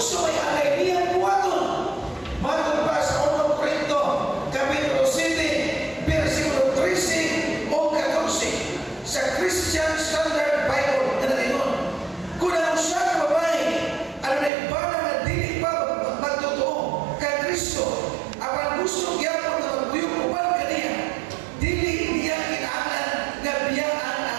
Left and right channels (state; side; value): drops out; left; at 14.5 s